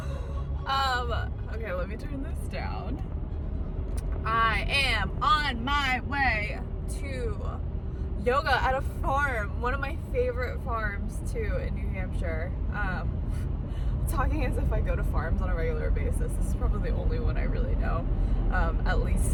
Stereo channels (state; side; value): identical; both; correlation 1.00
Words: Oh man. Okay, let me turn this down. I am on my way to yoga at a farm, one of my favorite farms too in New Hampshire. Talking as if I go to farms on a regular basis. This is probably the only one I really know, at least